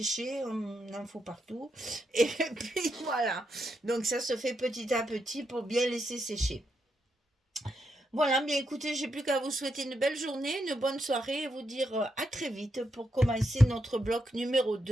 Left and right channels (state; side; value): normal; both; correlation 0.82